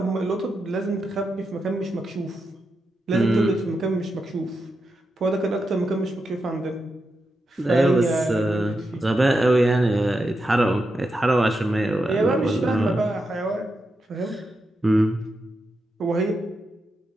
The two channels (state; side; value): normal; both; correlation 0.86